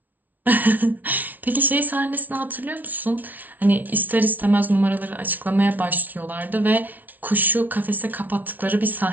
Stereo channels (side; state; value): left; late; 0.079 ms